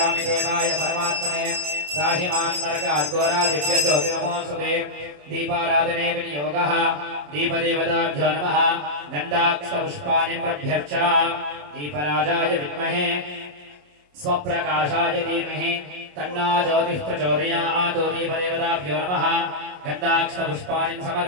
देवाय परमात्मने राहिमान् नरकाद्घोरा दिव्यज्योति नमोस्तुते दीपाराधने विनियोगः दीपदेवताभ्यो नमः गन्धाक्षपुष्पाणि प्रभ्यर्च दीपराजाय विद्महे स्वप्रकाशाय धीमहि तन्नो ज्योतिः प्रचोदयात् दीपदेवताभ्यो नमः गन्धाक्षपुष्पाणि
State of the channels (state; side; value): late; left; 27 ms